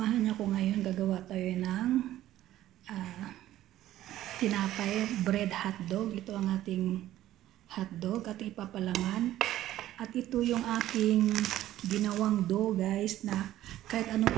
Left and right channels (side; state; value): left; quieter; 13.8 dB